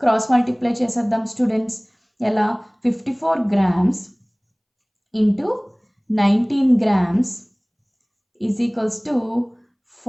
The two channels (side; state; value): both; identical; correlation 1.00